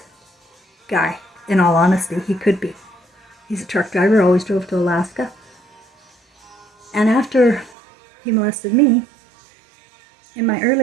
guy, in all honesty. He could be. He's a truck driver, always drove to Alaska. And after he molested me, in my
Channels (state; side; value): drops out; left; at 7.8 s